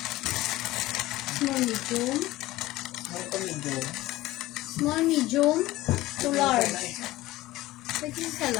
Small, medium. Ito medium. Small, medium to large. Pwede sa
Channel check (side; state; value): right; quieter; 17.4 dB